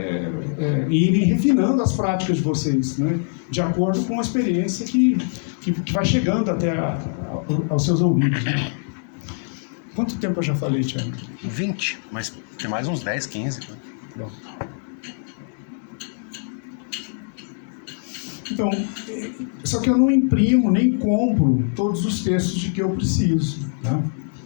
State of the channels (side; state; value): right; silent; digital silence